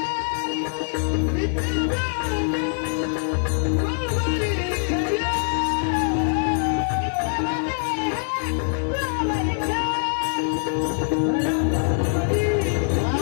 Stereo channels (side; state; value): right; silent; digital silence